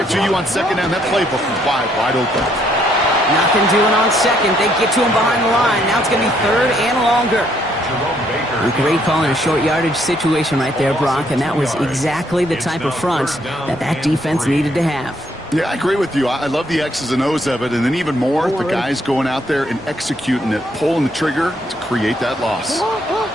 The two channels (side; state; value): both; normal; correlation 0.70